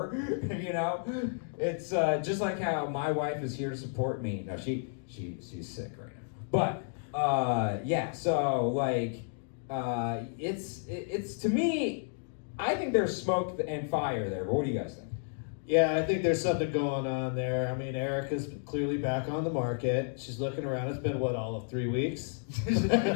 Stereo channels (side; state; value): right; silent; digital silence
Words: It's just like how my wife is here to support me. No, she's sick right now. But so like, it's to me, I think there's smoke and fire there. But what do you guys think? Yeah, I think there's something going on there. I mean, Erica's clearly back on the market. She's looking around. It's been, all of 3 weeks? Yeah.